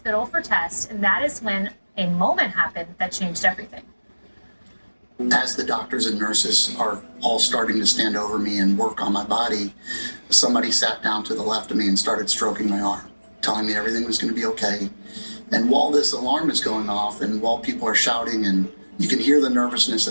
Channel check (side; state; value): both; inverted; correlation -1.00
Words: for tests, and that is when a moment happened that changed everything. As the doctors and nurses are all starting to stand over me and work on my body, somebody sat down to the left of me and started stroking my arm, telling me everything was going to be okay. And while this alarm is going off and while people are shouting and you can hear the nervousness